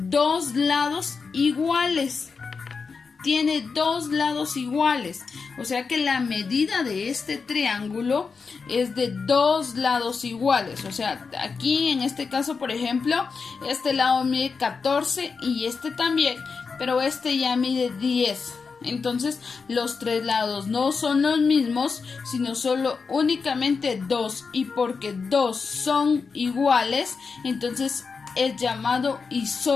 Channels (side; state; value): right; quieter; 5.0 dB